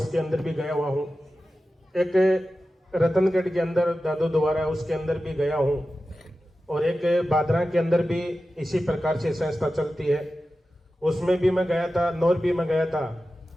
अंदर भी गया हुआ हूँ, एक रतनगढ़ के अंदर दादू द्वारा उसके अंदर भी गया हूँ, और एक बादरा के अंदर भी इसी प्रकार से संस्था चलती है, उसमें भी मैं गया था, नौर भी मैं गया था।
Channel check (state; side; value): normal; both; correlation 0.93